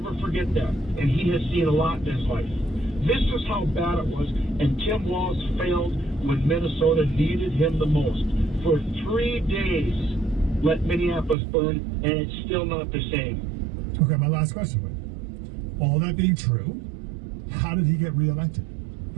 forget that, and he has seen a lot in his life. This is how bad it was, and Tim Walz failed when Minnesota needed him the most. For 3 days, let Minneapolis burn, and it's still not the same. Okay, my last question. All that being true, how did he get reelected?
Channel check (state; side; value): drops out; left; at 11.4 s